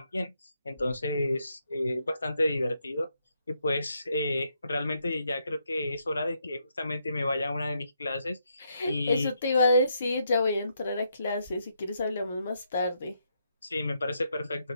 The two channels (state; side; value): inverted; both; correlation -0.77